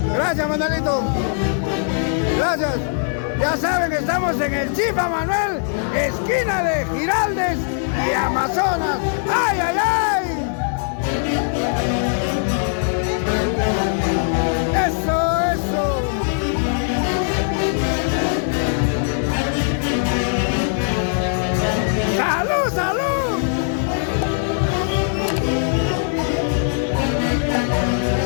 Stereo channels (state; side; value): silent; right; 65 dB below the other